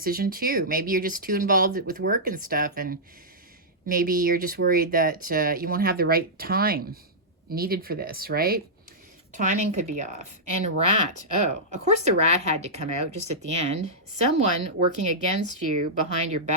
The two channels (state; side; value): normal; both; correlation -0.11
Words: too. Maybe you're just too involved with work and stuff, and maybe you're just worried that you won't have the right time needed for this, right? Timing could be off. And rat. Oh, of course the rat had to come out just at the end. Someone working against you behind your